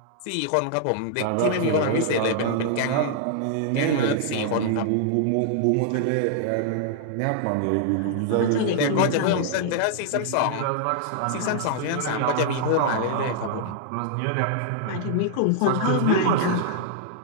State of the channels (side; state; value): both; different; correlation -0.01